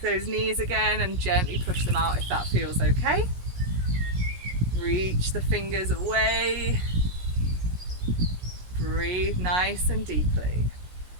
those knees again and gently push them out if that feels okay. Reach the fingers away. Breathe nice and deeply.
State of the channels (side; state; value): left; late; 17 ms